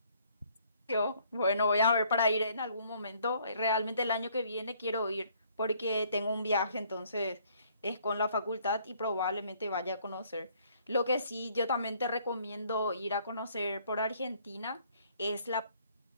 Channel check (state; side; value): inverted; both; correlation -0.63